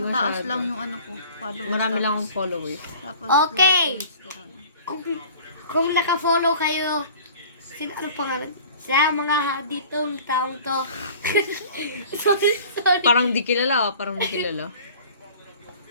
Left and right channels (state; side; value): inverted; both; correlation -0.45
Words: Taas masyado. lang yung ano ko. Followers. Marami tapos- lang akong followers. Tapos Okay. likers, ganun. Kung naka-follow kayo, ano pangalan? Sa mga ditong taong to. sorry. Parang di kilala, parang di kilala.